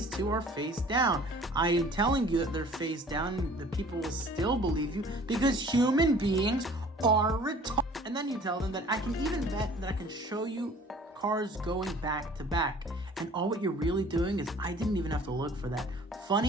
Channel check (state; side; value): normal; both; correlation 0.50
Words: two are face down. I am telling you that they're face down, and the people will still believe you because human beings are retarded. And then you tell them that I can even bet that I can show you cards going back to back. And all what you're really doing is I didn't even have to look for that.